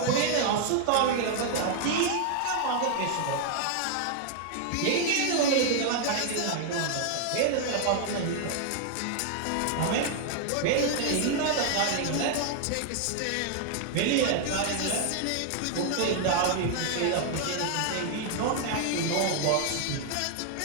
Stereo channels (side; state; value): both; different; correlation 0.00